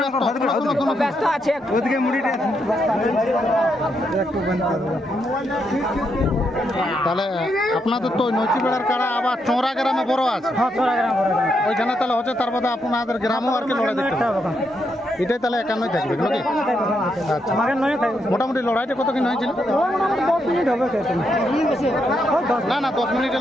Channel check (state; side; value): normal; both; correlation 0.80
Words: ব্যস্ত আছে ওদিকে মুড়িটা। তাহলে আপনাদের তো নৈচিবেড়ার কাড়া আবার চোরা গ্রামে বড় আছে। হ্যাঁ চোরা গ্রাম ওইখানে তাহলে হচ্ছে তার বাদে আপনাদের গ্রামেও আর কি লড়াই দেখতে হবে। এটাই তাহলে 51 থাকবে নাকি? আচ্ছা মোটামুটি লড়াইটা কত কিন হয়েছিল? 10 মিনিট হবে। না না 10 মিনিট